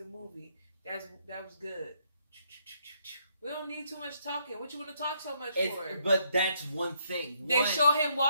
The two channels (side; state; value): both; inverted; correlation -0.73